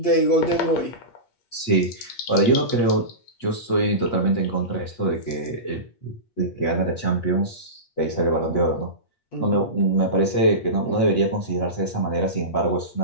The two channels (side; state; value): right; late; 8.5 ms